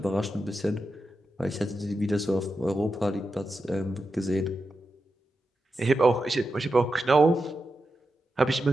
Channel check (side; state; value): both; normal; correlation 0.89